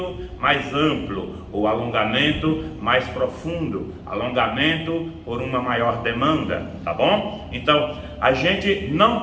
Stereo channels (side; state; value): both; identical; correlation 1.00